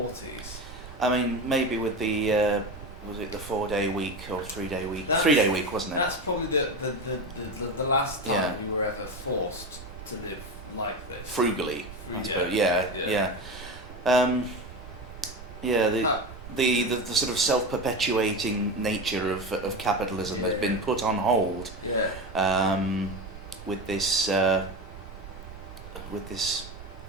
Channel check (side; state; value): right; noise; rumble, 14 dB below the sound